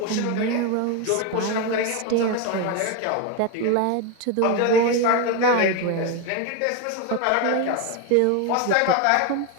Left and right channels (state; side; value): different; both; correlation 0.02